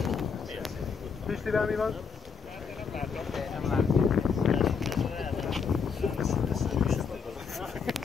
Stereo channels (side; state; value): right; quieter; 5.8 dB